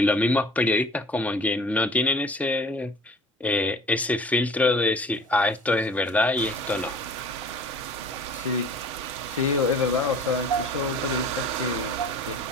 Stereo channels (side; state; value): both; normal; correlation 0.46